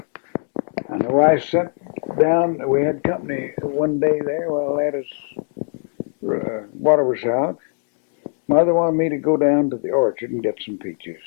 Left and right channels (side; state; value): right; silent; digital silence